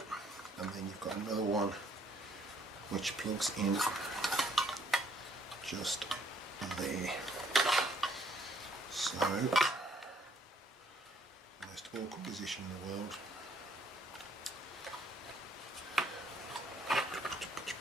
and then you've got another one which plugs in just there. So, most awkward position in the world.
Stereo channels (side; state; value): both; normal; correlation 0.65